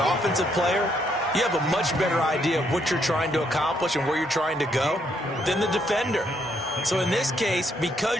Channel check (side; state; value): both; normal; correlation 0.73